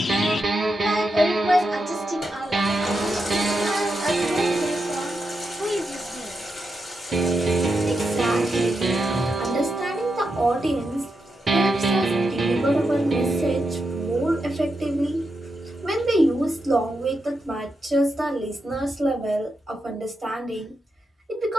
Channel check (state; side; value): normal; both; correlation 0.86